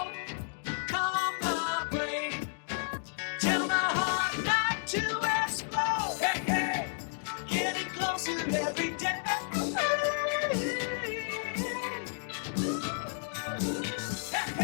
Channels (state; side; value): silent; right; digital silence